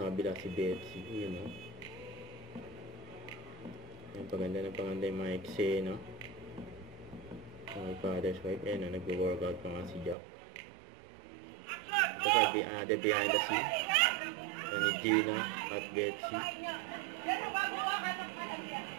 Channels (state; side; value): drops out; left; at 10.2 s